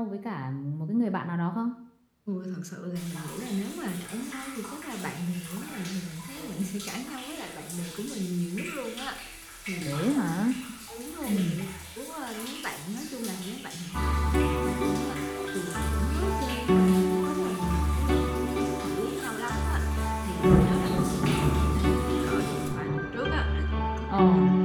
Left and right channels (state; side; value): identical; both; correlation 1.00